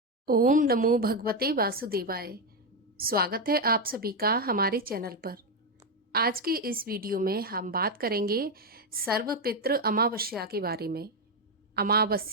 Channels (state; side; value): normal; both; correlation 0.06